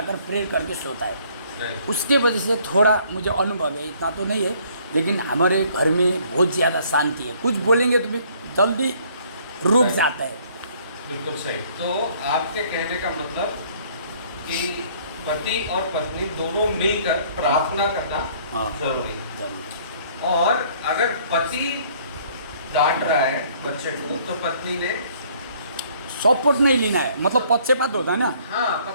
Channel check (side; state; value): both; inverted; correlation -0.60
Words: प्रेयर करके सोता है। उसके वजह से थोड़ा मुझे अनुभव है, इतना तो नहीं है, लेकिन हमारे घर में बहुत ज़्यादा शांति है। कुछ बोलेंगे तो भी जल्दी रुक जाता है। बिल्कुल सही। तो आपके कहने का मतलब कि पति और पत्नी दोनों मिलकर प्रार्थना करना जरूरी है। और अगर पति डांट रहा है बच्चे को तो पत्नी ने सपोर्ट नहीं लेना है, मतलब पक्षपात होता है ना। हाँ,